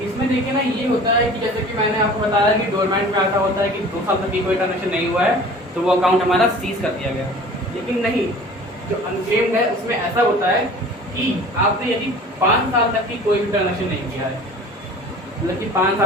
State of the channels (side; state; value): both; normal; correlation 0.44